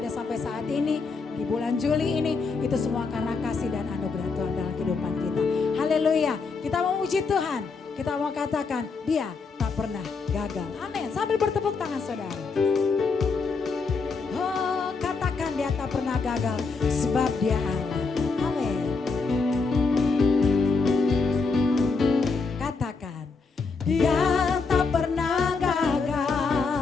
sampai saat ini, di bulan Juli ini, itu semua karena kasih dan anugerah Tuhan dalam kehidupan kita. Haleluya, kita memuji Tuhan. Kita mau katakan, Dia tak pernah gagal. Amin. Sambil bertepuk tangan saudara. Oh, katakan Dia tak pernah gagal, sebab Dia Allah. Amin. Katakan, Dia tak pernah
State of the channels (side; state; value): right; quieter; 4.5 dB